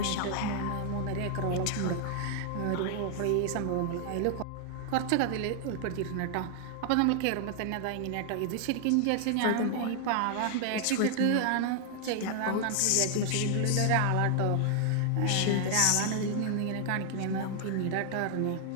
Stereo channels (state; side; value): different; both; correlation 0.00